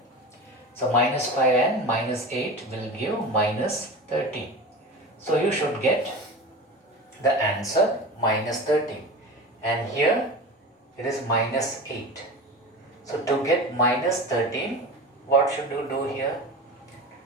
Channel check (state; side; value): normal; both; correlation 0.31